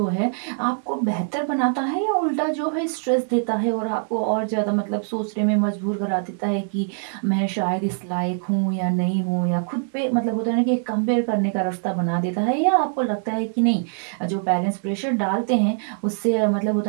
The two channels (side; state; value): left; silent; digital silence